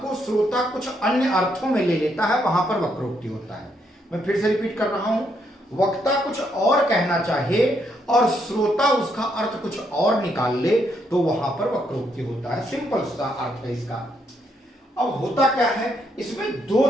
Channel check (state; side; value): normal; both; correlation 0.75